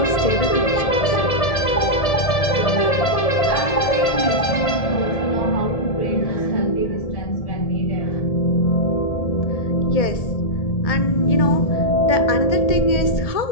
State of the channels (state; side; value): late; right; 1.7 ms